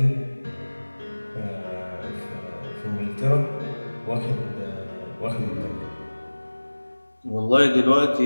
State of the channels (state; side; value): inverted; both; correlation -1.00